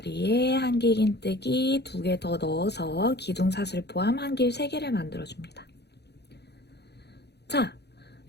한길긴뜨기 2개 더 넣어서 기둥사슬 포함 한길 3개를 만들어줍니다. 자,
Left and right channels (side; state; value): right; late; 0.48 ms